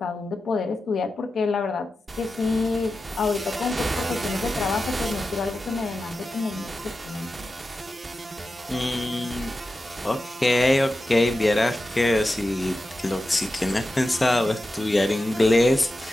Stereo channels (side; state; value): both; normal; correlation 0.92